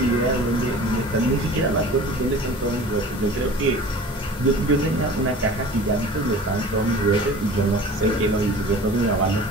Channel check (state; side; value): normal; both; correlation 0.42